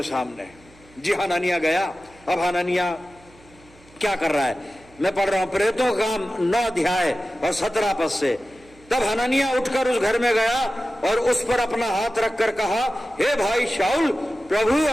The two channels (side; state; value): right; noise; hum, 27 dB below the sound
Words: सामने। जी हननिया गया। अब हननिया क्या कर रहा है, मैं पढ़ रहा हूं प्रेरितों का काम 9 अध्याय और 17 पद से। तब हननिया उठकर उस घर में गया और उस पर अपना हाथ रखकर कहा, हे भाई शाऊल, प्रभु